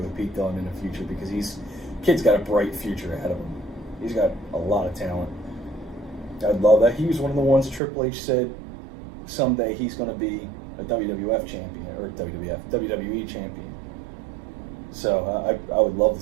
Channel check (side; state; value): left; drops out; at 7.8 s